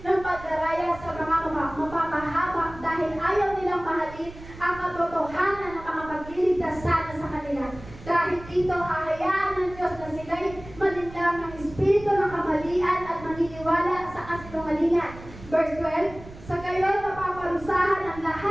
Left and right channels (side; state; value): right; noise; rumble, 17 dB below the sound